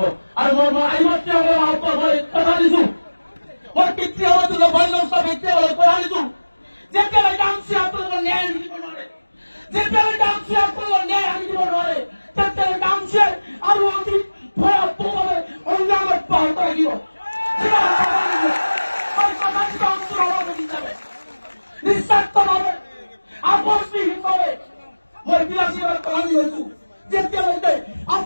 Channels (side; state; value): both; inverted; correlation -1.00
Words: আৰু মই আইমাতৃসকলক আহ্বান মই কথা দিছো, মই পিতৃসকলক পিতৃসকলক কথা দিছো, যেতিয়ালৈকে আমচি আপোনালোকৰ ন্যায় দিব নোৱাৰে, যেতিয়ালৈকে আমচি আপোনালোকৰ ন্যায় আনি দিব নোৱাৰে, তেতিয়ালৈকে আমচিয়ে আৰু অতি ভয়াৱহভাৱে সংগ্ৰাম অব্যাহত ৰাখিব। নিস্বাৰ্থভাৱে আপোচবিহীনভাৱে মই বিলাসীবাদ পালন হৈছো। যেতিয়ালৈকে